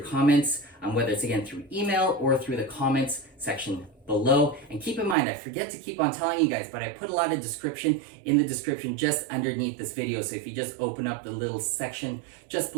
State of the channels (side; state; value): left; drops out; at 5.2 s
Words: whether it's again through email or through the comments section below. And keep in mind, I forget to keep on telling you guys, but I put a lot of description in the description just underneath this video. So if you just open up the little section just